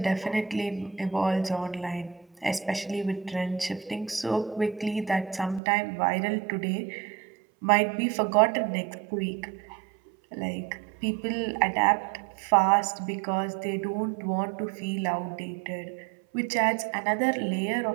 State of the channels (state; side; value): drops out; left; at 5.6 s